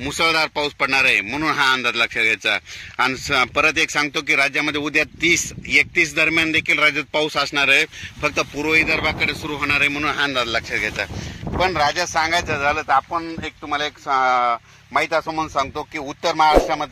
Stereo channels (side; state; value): both; identical; correlation 1.00